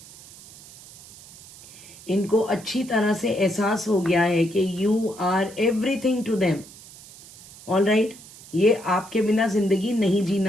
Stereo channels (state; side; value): noise; right; hiss, 19 dB below the sound